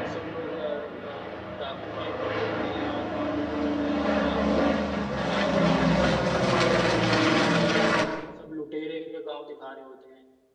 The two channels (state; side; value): identical; both; correlation 1.00